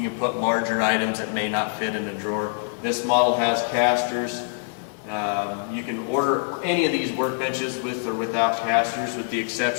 can put larger items that may not fit in a drawer. This model has casters. You can order any of these workbenches with or without casters, with the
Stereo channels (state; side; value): silent; right; digital silence